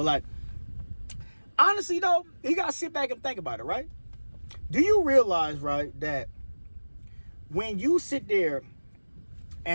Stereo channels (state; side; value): inverted; both; correlation -1.00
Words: like, honestly though, you got to sit back and think about it, right? Do you realize, right, that when you sit there